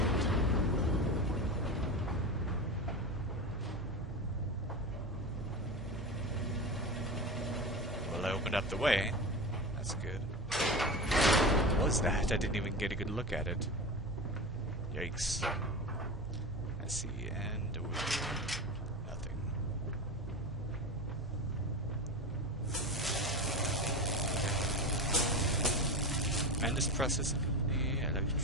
Well, I opened up the way. That's good. What was that? I didn't even get a good look at it. Yikes. I see, and over here, nothing. Mandus Processing Company,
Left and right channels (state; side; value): normal; both; correlation 0.24